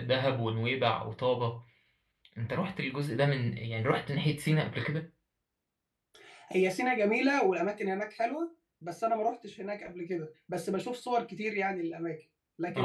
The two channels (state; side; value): identical; both; correlation 1.00